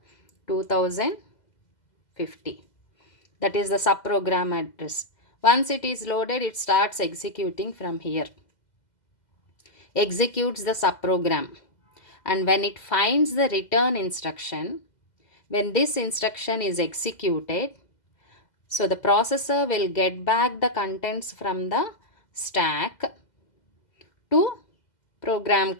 2050. That is the subprogram address. Once it is loaded, it starts executing from here. Executes the subprogram. And when it finds the return instruction, When this instruction is executed, so the processor will get back the contents from the stack to program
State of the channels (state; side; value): late; right; 2.0 ms